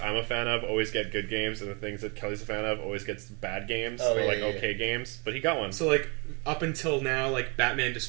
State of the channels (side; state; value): left; quieter; 31.9 dB